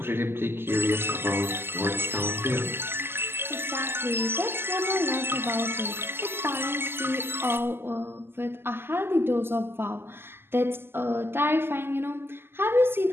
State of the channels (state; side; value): late; left; 0.11 ms